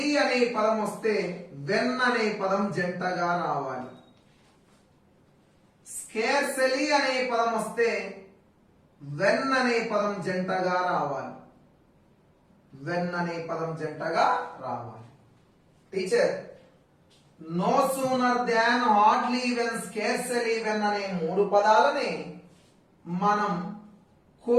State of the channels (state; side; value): identical; both; correlation 1.00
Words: వెన్ అనే పదం జంటగా రావాలి. స్కేర్సెలీ అనే పదం వస్తే వెన్ అనే పదం జంటగా రావాలి. Teacher no sooner than, hardly, when, scarcely, when అనే మూడు పదాలని మనం